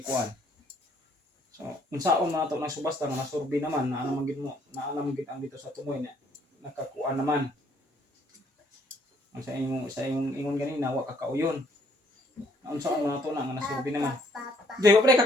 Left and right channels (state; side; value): normal; both; correlation 0.65